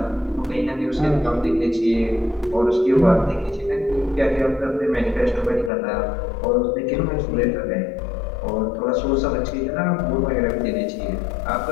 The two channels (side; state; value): right; drops out; at 5.7 s